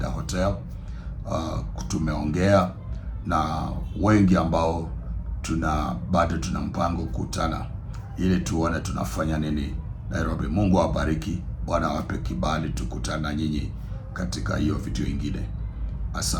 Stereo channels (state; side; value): identical; both; correlation 1.00